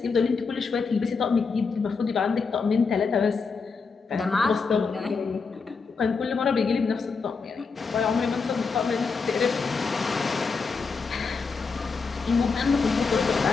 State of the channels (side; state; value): right; quieter; 4.9 dB